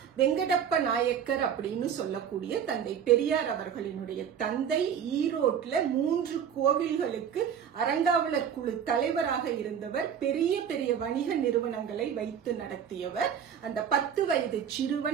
வெங்கடப்ப நாயக்கர் அப்படின்னு சொல்லக்கூடிய தந்தை பெரியார் அவர்களினுடைய தந்தை. ஈரோட்ல 3 கோவில்களுக்கு அறங்காவலர் குழு தலைவராக இருந்தவர். பெரிய பெரிய வணிக நிறுவனங்களை வைத்து நடத்தியவர். அந்த 10 வயது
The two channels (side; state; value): left; quieter; 8.2 dB